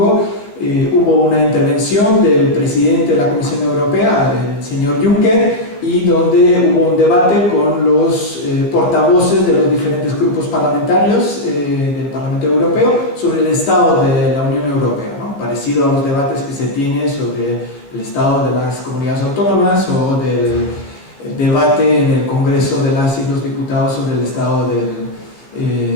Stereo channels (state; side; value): late; right; 14 ms